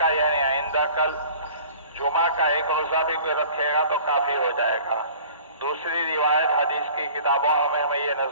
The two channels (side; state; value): both; inverted; correlation -0.48